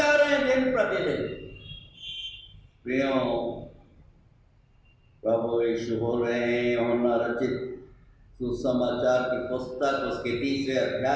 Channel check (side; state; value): both; identical; correlation 1.00